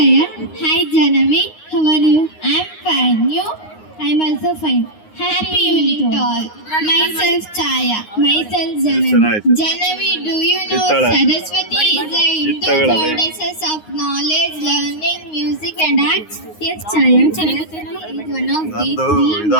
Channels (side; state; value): right; late; 9.6 ms